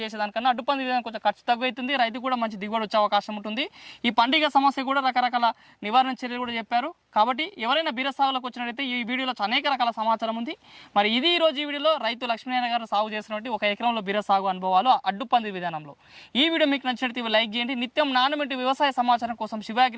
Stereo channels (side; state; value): both; identical; correlation 1.00